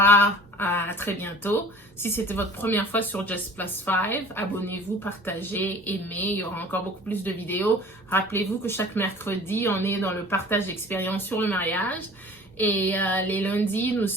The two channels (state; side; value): normal; both; correlation 0.45